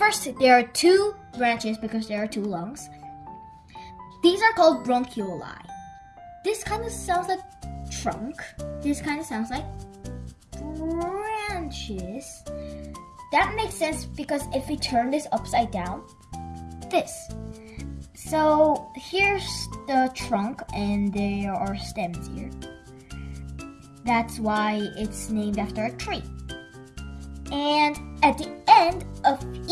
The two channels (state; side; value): identical; both; correlation 1.00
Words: there are two branches because there are two lungs. These are called bronchioli. This kind of sounds like trunk. This kind of sounds like branches. That makes sense because if we turn this upside down, this. So here's the trunk and there are stems here. That's why it's named after a tree. And at the end of